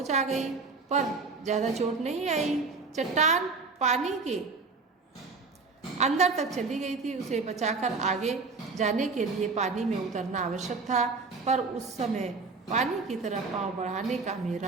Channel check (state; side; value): quieter; left; 4.2 dB